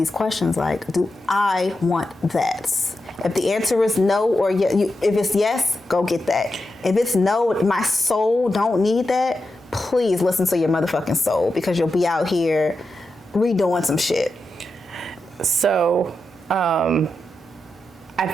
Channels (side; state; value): both; normal; correlation 0.88